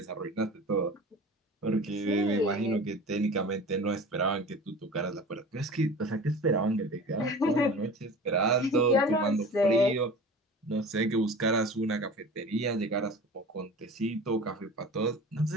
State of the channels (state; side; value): normal; both; correlation 0.38